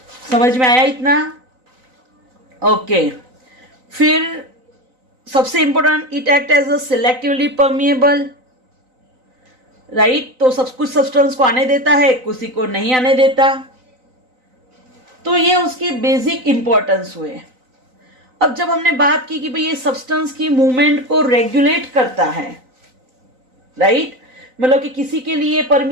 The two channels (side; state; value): left; late; 3.9 ms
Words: समझ में आया इतना? ओके, फिर सबसे important, it act as a selectively permeable, right. तो सब कुछ सब्सटेंस को आने देता है, किसी को नहीं आने देता। तो ये उसकी बेसिक इंपॉर्टेंस हुए। अब जब हमने बात की कि भाई ये सब्सटेंस की मूवमेंट को रेगुलेट करता है, राइट, मतलब कि किसी के लिए